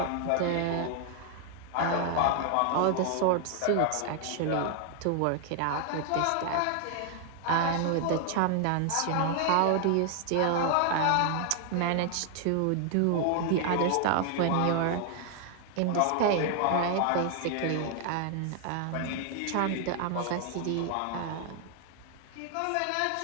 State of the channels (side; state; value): both; different; correlation 0.00